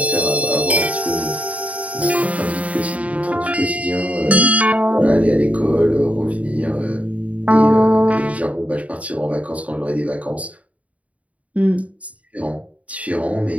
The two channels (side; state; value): left; late; 0.068 ms